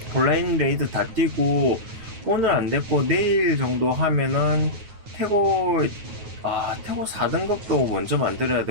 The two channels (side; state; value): left; late; 9.4 ms